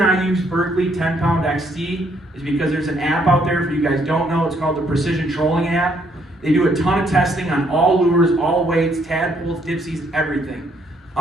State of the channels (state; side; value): normal; both; correlation 0.69